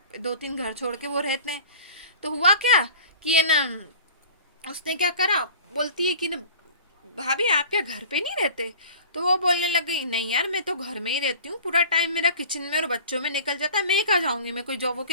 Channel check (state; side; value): inverted; both; correlation -0.43